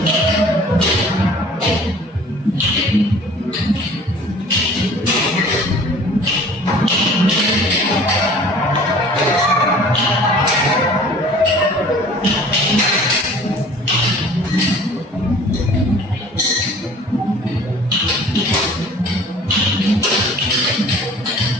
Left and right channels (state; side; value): normal; both; correlation 0.48